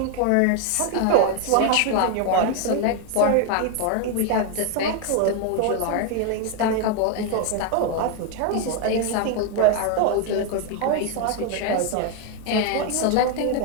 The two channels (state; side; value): different; both; correlation 0.01